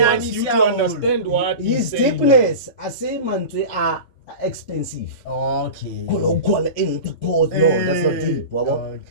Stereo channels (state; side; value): late; right; 3.5 ms